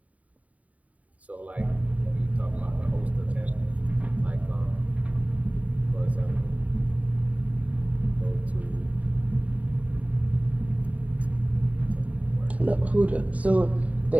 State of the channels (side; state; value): left; late; 0.069 ms